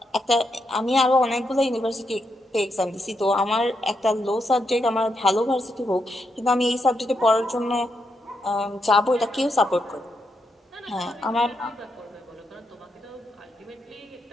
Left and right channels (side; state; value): both; normal; correlation 0.81